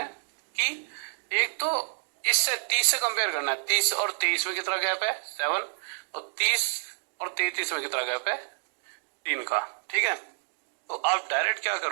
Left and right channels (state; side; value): silent; left; digital silence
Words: कि एक तो इससे 30 से कंपेयर करना है, 30 और 23 में कितना गैप है 7, और 30 और 33 में कितना गैप है 3 का। ठीक है, तो आप डायरेक्ट क्या